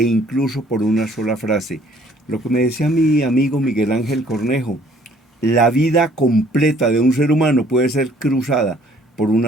incluso por una sola frase. Lo que me decía mi amigo Miguel Ángel Cornejo, la vida completa de un ser humano puede ser cruzada por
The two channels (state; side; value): normal; both; correlation 0.59